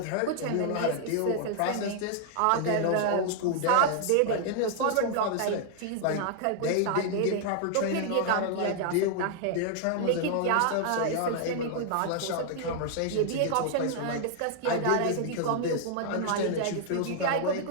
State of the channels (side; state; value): both; different; correlation 0.00